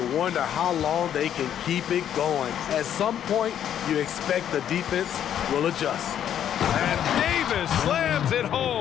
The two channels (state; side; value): quieter; right; 9.9 dB